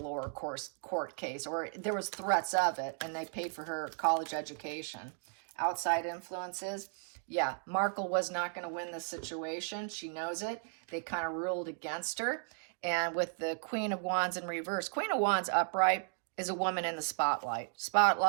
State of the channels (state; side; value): silent; left; 54 dB below the other